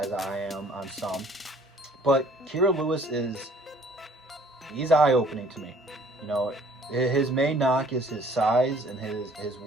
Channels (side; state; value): both; normal; correlation 0.56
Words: I am on some, but Kira Lewis he's eye-opening to me. You know, his main knock is his size and his